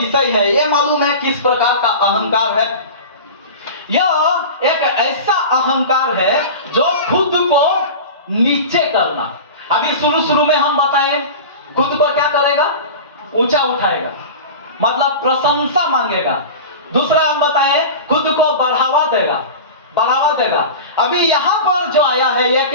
है, ये मालूम है किस प्रकार का अहंकार है? यह एक ऐसा अहंकार है जो खुद को नीचे करना। अभी शुरू में हम बताएं, खुद को क्या करेगा? ऊंचा उठाएगा, मतलब प्रशंसा मांगेगा। दूसरा हम बताएं, खुद को बढ़ावा देगा। अभी यहां पर जो आया है, यह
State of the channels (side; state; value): both; inverted; correlation -0.31